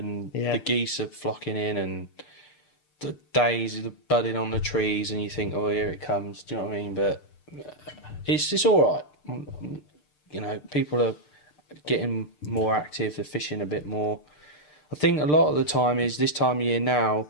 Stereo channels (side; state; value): right; late; 6.7 ms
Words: Yeah. the geese are flocking in, and the days are budding on the trees, and you think, oh, here it comes. Do you know what I mean? But it's all right. You know, people are getting more active. They're fishing a bit more. I think a lot of the time is this time of year now,